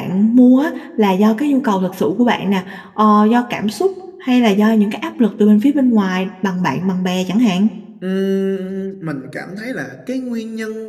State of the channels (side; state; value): both; identical; correlation 1.00